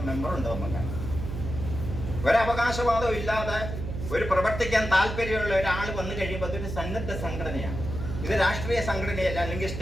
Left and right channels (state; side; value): noise; right; hum, 6 dB below the sound